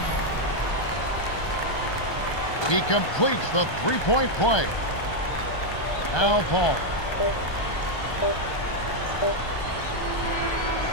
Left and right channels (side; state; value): right; late; 1.2 ms